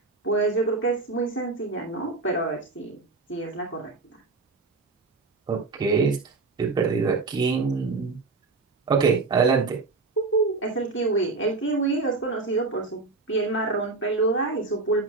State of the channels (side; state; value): left; quieter; 3.9 dB